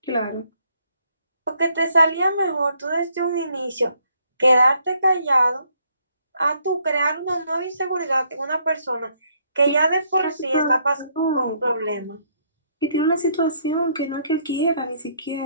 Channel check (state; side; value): inverted; both; correlation -0.70